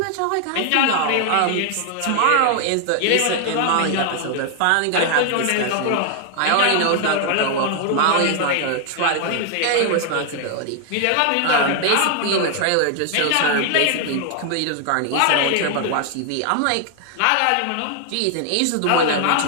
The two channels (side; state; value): both; different; correlation 0.00